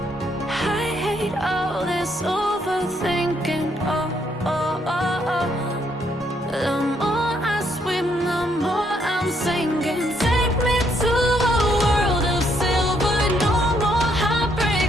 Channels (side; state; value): both; normal; correlation 0.72